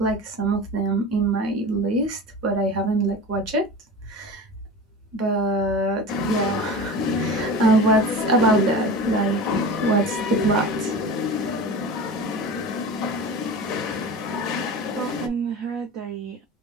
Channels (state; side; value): normal; both; correlation 0.32